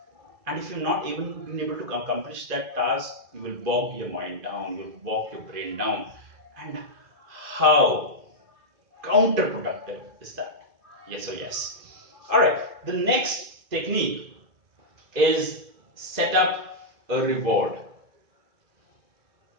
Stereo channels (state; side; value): late; left; 2.5 ms